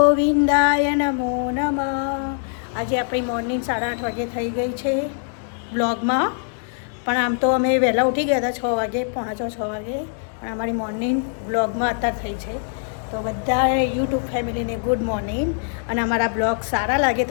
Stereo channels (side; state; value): right; silent; 64 dB below the other